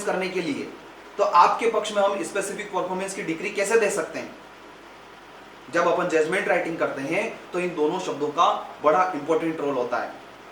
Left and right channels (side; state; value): both; identical; correlation 1.00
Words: करने के लिए, तो आपके पक्ष में हम स्पेसिफिक परफॉर्मेंस की डिग्री कैसे दे सकते हैं? जब अपन जजमेंट राइटिंग करते हैं तो इन दोनों शब्दों का बड़ा इंपॉर्टेंट रोल होता है।